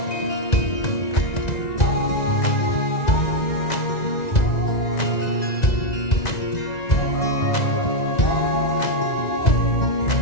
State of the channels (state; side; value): late; right; 1.9 ms